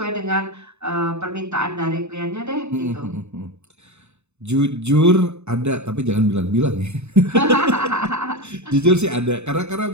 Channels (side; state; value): left; late; 0.82 ms